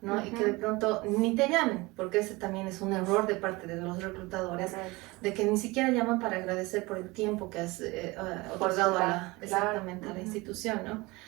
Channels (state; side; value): quieter; left; 23.0 dB